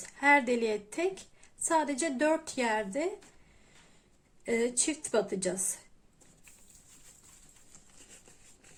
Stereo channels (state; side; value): identical; both; correlation 1.00